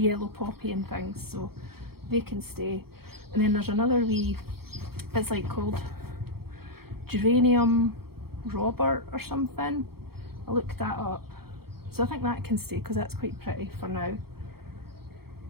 poppy and things, so they can stay. And then there's another wee, it's like called geranium Robert or something. I looked that up, so I think that can stay because that's quite pretty for now.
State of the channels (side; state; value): left; late; 0.94 ms